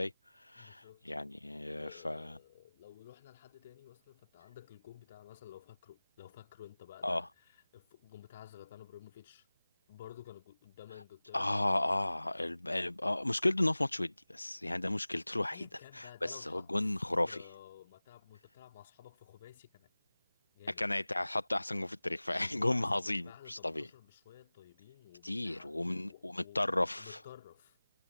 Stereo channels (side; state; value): both; inverted; correlation -0.99